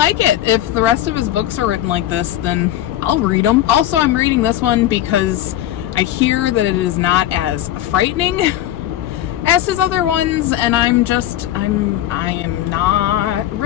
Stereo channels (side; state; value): right; quieter; 12.8 dB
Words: it. If the rest of his books are written like this, then I'll read them. Also, I'm reading this one because I hear that it is not as frightening as his other ones, and I am not